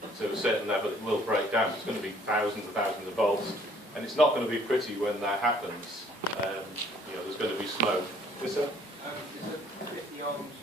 to a certain level, it will break down. It's going to be thousands and thousands of volts, and it's not going to be pretty when that happens. There's going to be smoke. Yes, sir? Is the 50 ohms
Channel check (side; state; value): both; normal; correlation 0.60